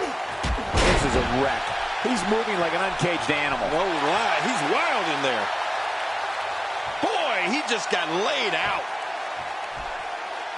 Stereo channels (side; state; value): both; identical; correlation 1.00